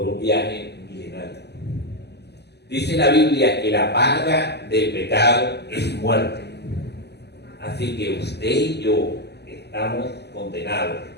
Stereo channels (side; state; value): right; late; 0.49 ms